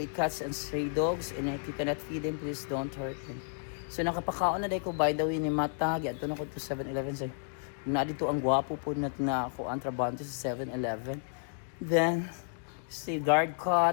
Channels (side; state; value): right; silent; digital silence